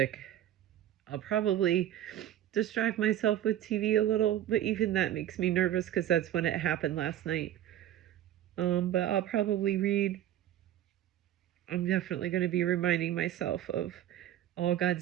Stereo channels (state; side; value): quieter; left; 11.9 dB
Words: I'll probably distract myself with TV a little, but even that makes me nervous because that's when it happened last night. But I'll probably read. I'm definitely going to be reminding myself of all